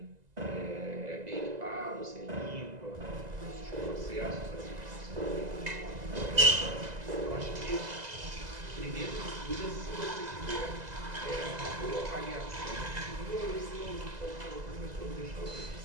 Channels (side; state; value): left; late; 2.0 ms